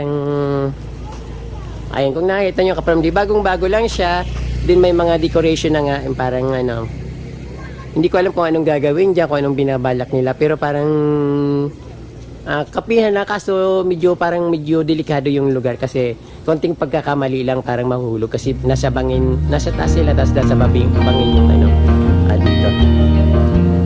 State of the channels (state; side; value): identical; both; correlation 1.00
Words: ayun, kung nakita nyo kapag bagong-bago lang siya, din may mga decoration na nga, parang hindi ko alam kung anong gagawin dyan, kung anong binabalak nila, pero parang kapihan na, kaso medyo delikado yung lugar kasi konting pagkakamali lang parang mahulog kasi nasa taas sila, tapos nasa bangin yung dito.